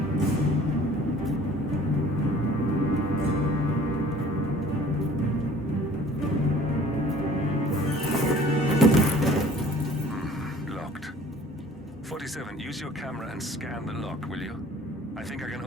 Locked. 47, use your camera and scan the lock, will you? I think I can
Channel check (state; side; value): normal; both; correlation 0.50